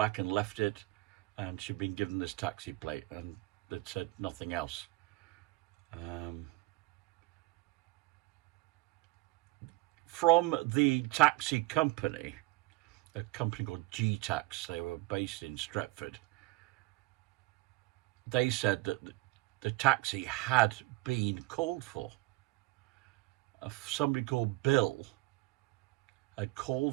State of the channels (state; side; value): quieter; left; 20.5 dB